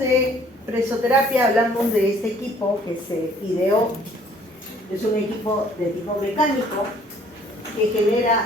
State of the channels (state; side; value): normal; both; correlation 0.58